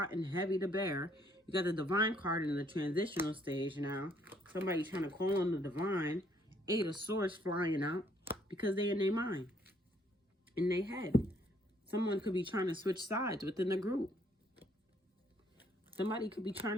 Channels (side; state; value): both; normal; correlation 0.66